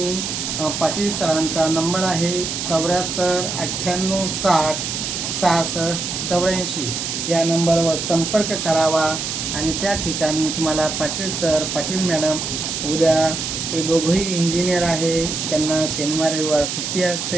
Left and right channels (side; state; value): right; noise; hiss, 3 dB below the sound